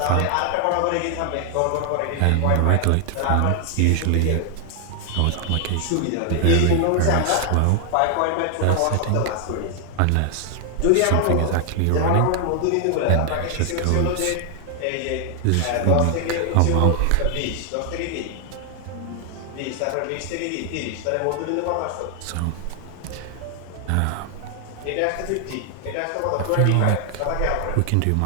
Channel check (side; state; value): both; different; correlation 0.00